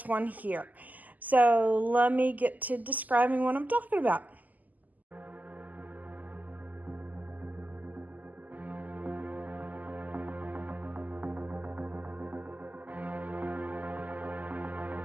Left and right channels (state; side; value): late; left; 0.081 ms